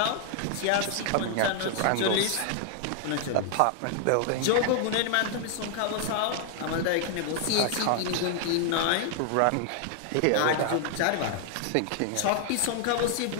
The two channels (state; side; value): different; both; correlation 0.00